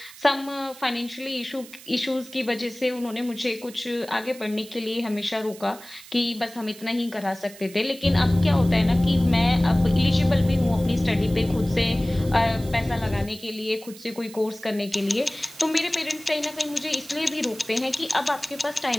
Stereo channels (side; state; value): right; noise; hiss, 19 dB below the sound